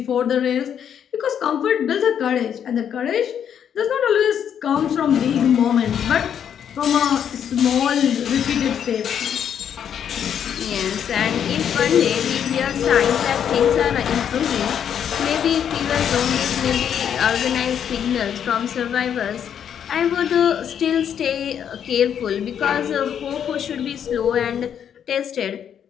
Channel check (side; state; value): right; quieter; 8.7 dB